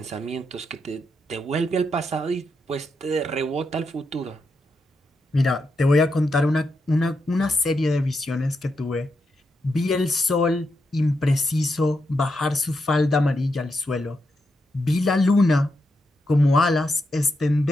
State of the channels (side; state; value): both; normal; correlation 0.84